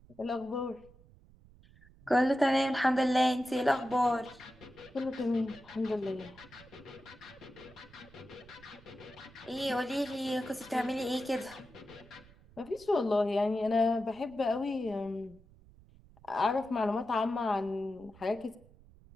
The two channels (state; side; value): noise; right; rumble, 24 dB below the sound